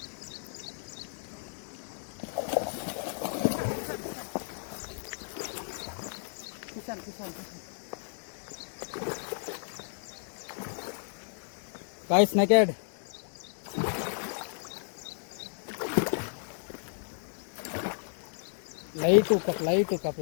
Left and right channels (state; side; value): silent; right; digital silence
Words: Guys, naked. Light to cup, light to cup,